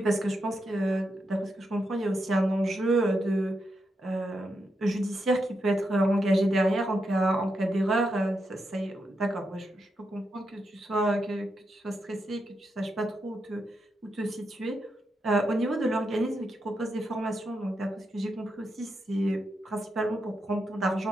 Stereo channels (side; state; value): both; normal; correlation 0.84